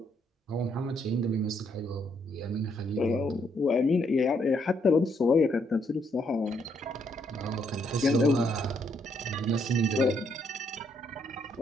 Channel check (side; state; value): both; normal; correlation 0.73